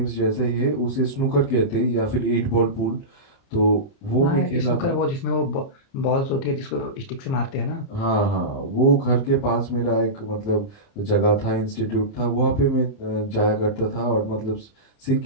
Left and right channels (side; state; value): right; late; 30 ms